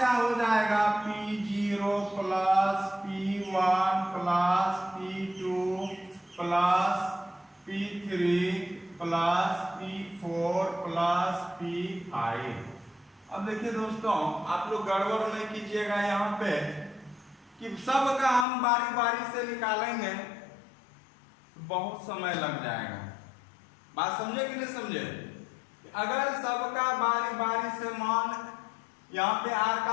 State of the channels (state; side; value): drops out; right; at 18.4 s